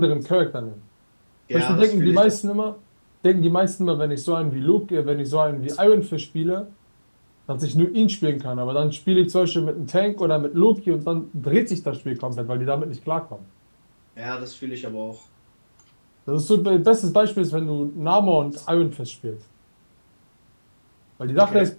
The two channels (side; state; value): both; inverted; correlation -1.00